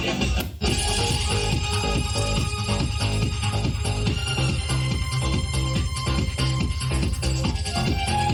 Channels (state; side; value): identical; both; correlation 1.00